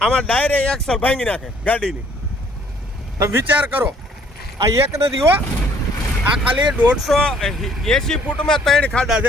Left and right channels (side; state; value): both; normal; correlation 0.61